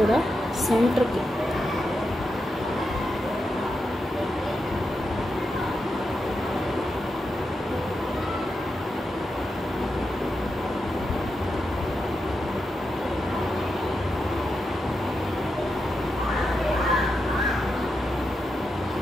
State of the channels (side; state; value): both; normal; correlation 0.87